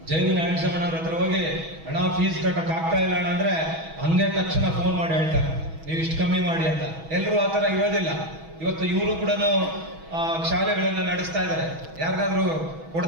JV ನಾರಾಯಣಸ್ವಾಮಣ್ಣವ್ರ ಹತ್ರ ಹೋಗಿ ಹಣ ಫೀಸ್ ಕಟ್ಟಕ್ ಆಗ್ತಾ ಇಲ್ಲ ಅಣ್ಣ ಅಂದ್ರೆ ಹಂಗೆ ತಕ್ಷಣ ಫೋನ್ ಮಾಡಿ ಹೇಳ್ತಾರೆ ನೀವು ಇಷ್ಟು ಕಮ್ಮಿ ಮಾಡಿ ಅಂತ. ಎಲ್ಲರೂ ಆತರ ಇರೋದಿಲ್ಲ. ಇವತ್ತು ಇವರು ಕೂಡ ಶಾಲೆಗಳನ್ನ ನಡೆಸ್ತಾ ಇದ್ದಾರೆ. ಯಾರಿಗಾದ್ರೂ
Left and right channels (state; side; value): late; left; 6.2 ms